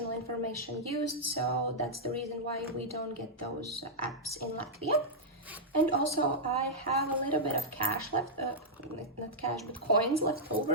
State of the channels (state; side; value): normal; both; correlation -0.07